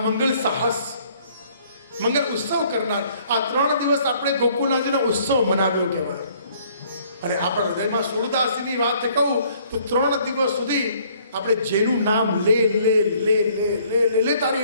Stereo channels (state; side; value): inverted; both; correlation -0.61